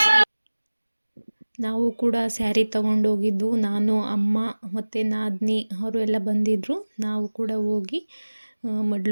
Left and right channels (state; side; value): inverted; both; correlation -1.00